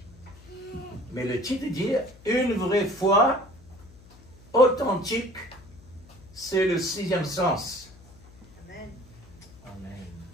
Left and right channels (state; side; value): noise; left; hum, 23 dB below the sound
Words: Mais le titre dit une vraie foi authentique, c'est le 6e sens. Amen. Amen.